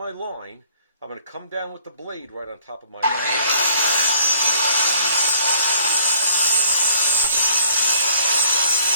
line. I'm going to come down with the blade right on top of my line.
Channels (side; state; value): both; inverted; correlation -0.58